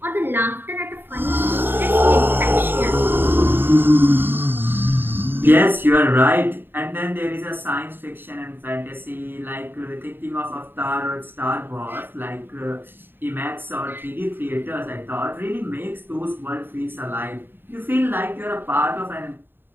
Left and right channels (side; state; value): left; late; 0.098 ms